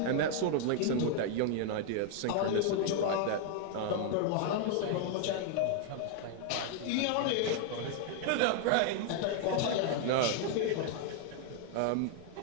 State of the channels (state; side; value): different; both; correlation 0.00